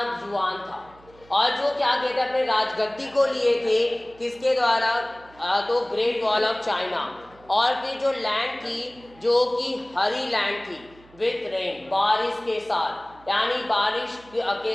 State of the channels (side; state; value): right; noise; hum, 26 dB below the sound